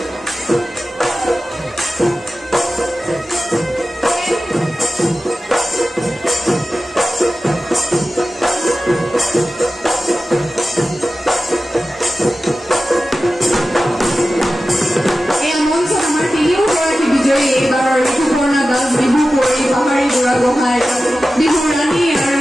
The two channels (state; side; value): normal; both; correlation 0.94